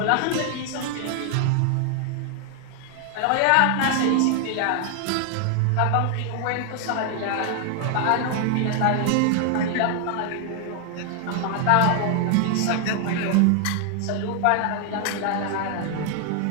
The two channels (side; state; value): both; different; correlation 0.00